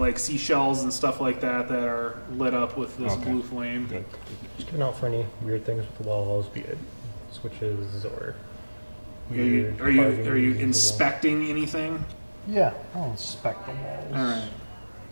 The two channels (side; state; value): both; inverted; correlation -1.00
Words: seashells and stuff like that are lit up with this Okay. blue flame. Good. Just looking out for any weird things with the walls, be it switches or Are you weird are you carvings are you in the wall. inspecting anything? Yeah, I'll inspect the walls. All right.